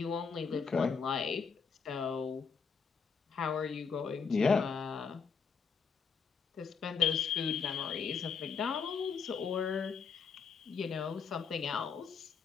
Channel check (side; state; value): right; quieter; 5.9 dB